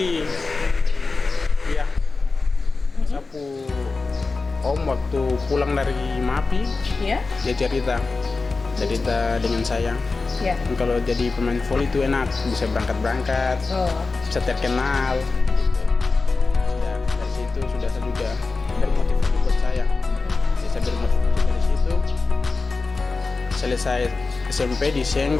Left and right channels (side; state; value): right; quieter; 3.9 dB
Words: ya. Sapu om waktu pulang dari MAPI, Ya? dia cerita dengan saya. Ya. Kalau jadi pemain voli itu enak, bisa berangkat, Oh. bisa terkenal. Gitu. Sudah dari situ sudah saya juga bermotivasi buat saya. Jadi saya bermotivasi dari situ. Selesai SMP di